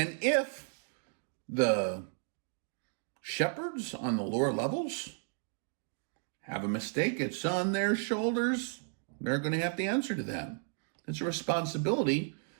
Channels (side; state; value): left; silent; 55 dB below the other